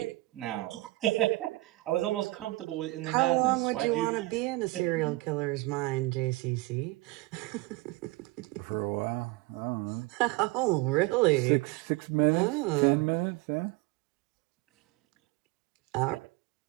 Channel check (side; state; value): left; quieter; 21.3 dB